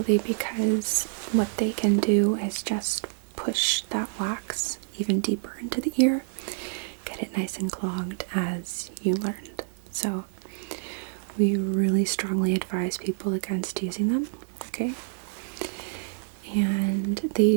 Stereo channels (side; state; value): left; silent; 60 dB below the other